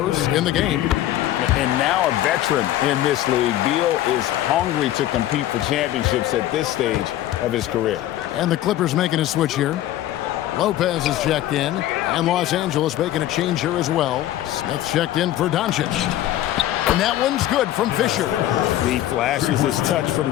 in the game. And now a veteran in this league, Beal is hungry to compete for championships at this stage of his career. And the Clippers making a switch here. Lopez is checked in, and Los Angeles making a change here as well. Smith checked in for Doncic. And that one's good from Fisher. He flashes his touch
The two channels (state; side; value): quieter; right; 13.6 dB